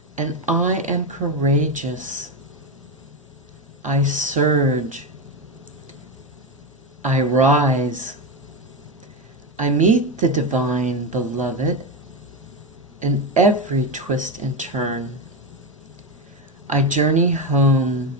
and I am courageous. I surge. I rise. I meet the divine beloved in every twist and turn. I journey home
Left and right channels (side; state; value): both; normal; correlation 0.13